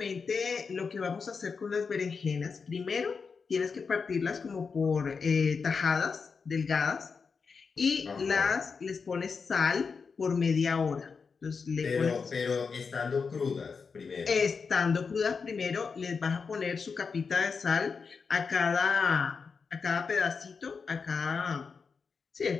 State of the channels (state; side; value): quieter; right; 5.3 dB